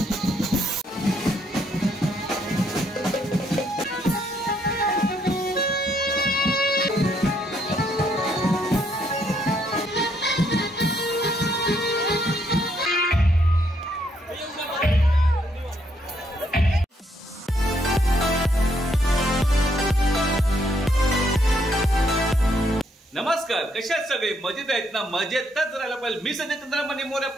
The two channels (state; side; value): normal; both; correlation 0.72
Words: नमस्कार, कशा आहेत सगळे? मजेत आहेत ना? मजेतच राहायला पाहिजे। मी संजय चंद्रमणी मोरे